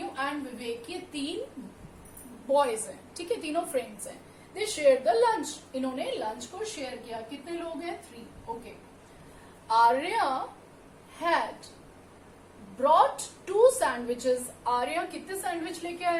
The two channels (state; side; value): identical; both; correlation 1.00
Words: and Vivek ये तीन boys हैं, ठीक है, तीनों friends हैं. They share the lunch, इन्होंने lunch को share किया. कितने लोग हैं? 3. Okay. Arya had brought 2 sandwiches. Arya कितने सैंडविच लेके